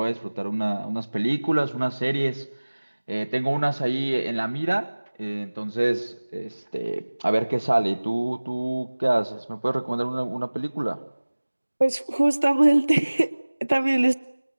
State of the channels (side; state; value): both; inverted; correlation -1.00